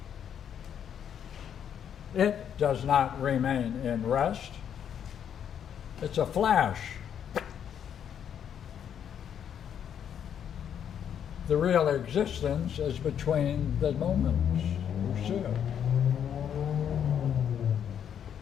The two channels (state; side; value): quieter; right; 8.8 dB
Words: It does not remain in rest. It's a flash. The real existence is between the moments. You see it.